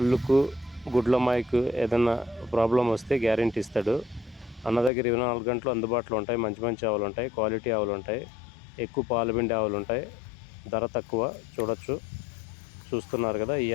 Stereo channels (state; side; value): drops out; right; at 4.9 s